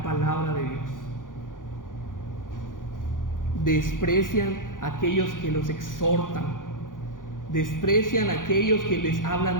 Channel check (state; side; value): late; right; 0.89 ms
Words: palabra de Dios. Desprecian a aquellos que los exhortan. Desprecian a aquellos que les